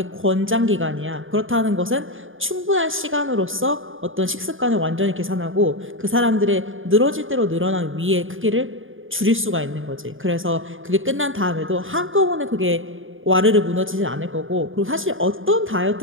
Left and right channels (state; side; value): late; left; 0.58 ms